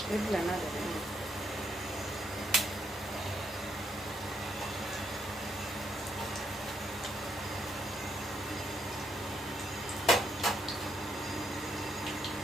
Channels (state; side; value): normal; both; correlation 0.76